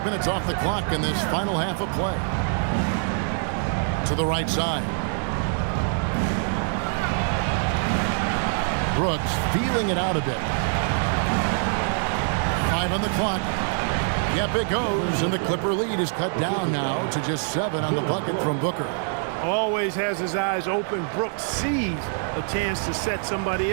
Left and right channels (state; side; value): silent; left; 58 dB below the other